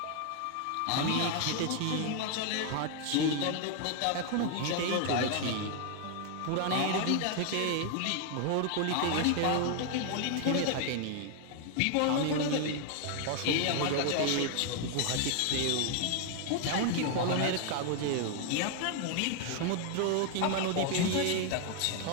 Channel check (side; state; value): both; different; correlation 0.00